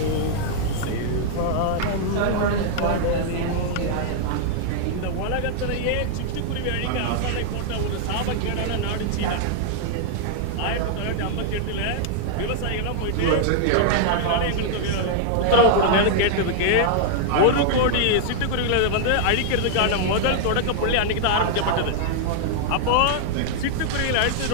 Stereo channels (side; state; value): both; different; correlation -0.01